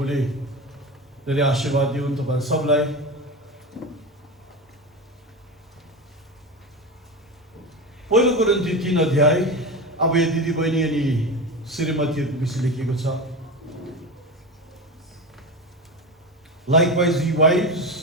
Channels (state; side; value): normal; both; correlation 0.23